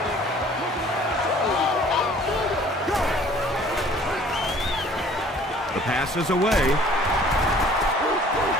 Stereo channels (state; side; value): normal; both; correlation 0.53